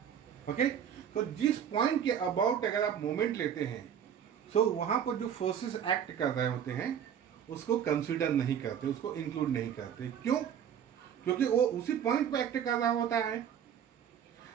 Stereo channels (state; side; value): quieter; left; 8.8 dB